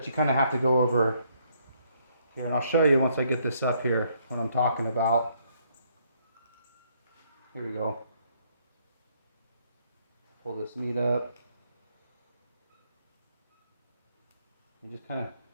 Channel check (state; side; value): inverted; both; correlation -0.69